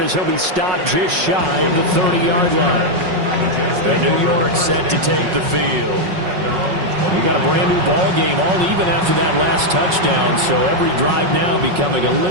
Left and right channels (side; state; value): left; late; 5.4 ms